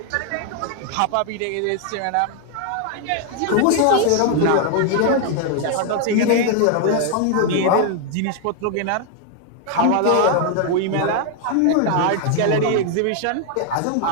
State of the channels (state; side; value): different; both; correlation 0.00